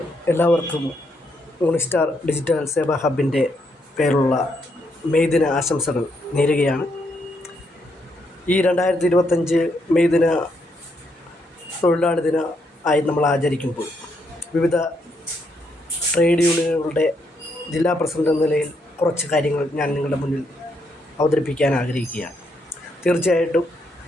എല്ലാവർക്കും യൂണിസ്റ്റാർ ഡിജിറ്റൽ സേവാ ഹബിൻ്റെ പേരുള്ള മെയ് ദിന ആശംസകൾ നേരുകയാണ്. ഈ 2025 മെയ് ദിന തൊഴിലാളി ദിന ആയി നമ്മൾ ആചരിക്കുമ്പോൾ വിവിധ ട്രേഡ് യൂണിയനുകളുടെ ജില്ലാ പ്രസിഡന്റ് എന്ന നിലയിൽ കുറച്ച് കാര്യങ്ങൾ ഞാൻ നിങ്ങളുടെ മുന്നിൽ അവതരിപ്പിക്കാൻ ആഗ്രഹിക്കുകയാണ്. തീർച്ചയായിട്ടും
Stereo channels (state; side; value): normal; both; correlation 0.76